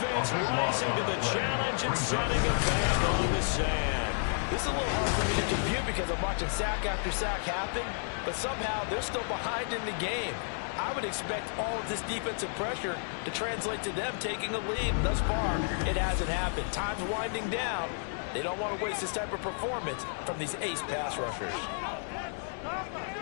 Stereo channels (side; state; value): right; silent; 57 dB below the other